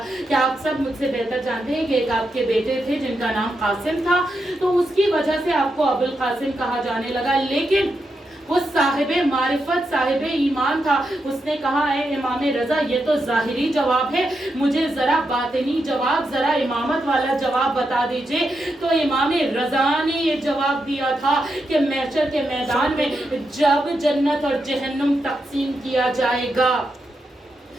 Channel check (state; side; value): normal; both; correlation 0.85